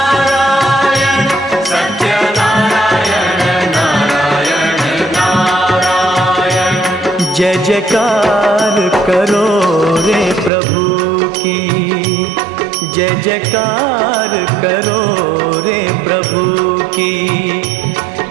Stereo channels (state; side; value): drops out; left; at 10.5 s